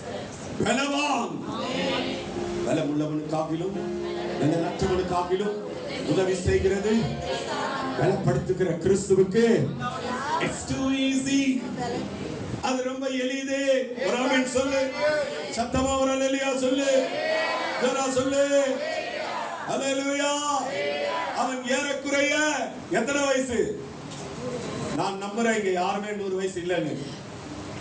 பலவான். பலமுள்ளவனு காப்பிலும் பலனற்றவனு காப்பிலும் உதவி செய்கிறது பலப்படுத்துகிற கிறிஸ்துவுக்கு it's too easy. அது ரொம்ப எளிது. ஒரு ஆமென் சொல்லு. சத்தமா ஒரு அல்லேலூயா சொல்லு. ஜோரா சொல்லு. அல்லேலூயா. அவன் ஏறக்குறைய எத்தனை வயசு? நான் நம்புறேன் இங்க யாருமே 100 வயசு இல்லைன்னு.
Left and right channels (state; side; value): identical; both; correlation 1.00